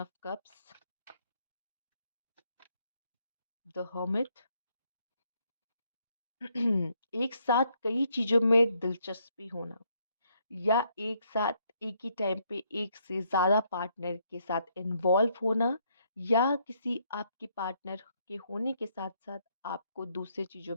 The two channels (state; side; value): inverted; both; correlation -0.72